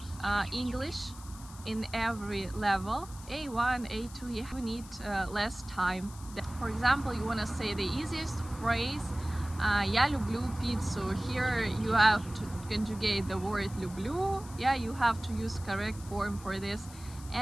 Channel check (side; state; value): left; noise; hiss, 18 dB below the sound